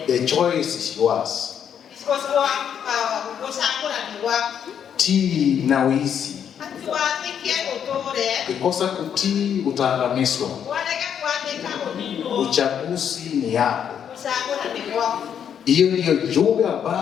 the choice is yours. Tii na uisi. Ukikosa kutii utaangamizwa. Uchaguzi ni yako. Hiyo ndiyo jumbe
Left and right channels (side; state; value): right; quieter; 8.5 dB